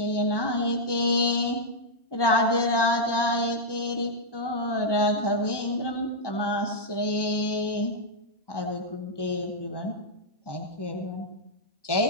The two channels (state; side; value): late; right; 1.2 ms